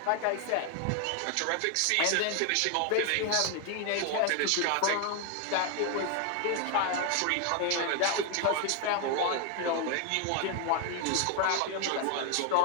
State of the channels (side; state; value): both; different; correlation 0.01